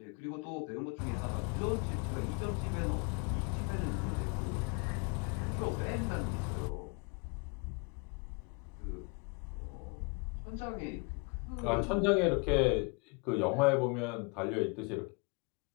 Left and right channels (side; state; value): right; quieter; 32.2 dB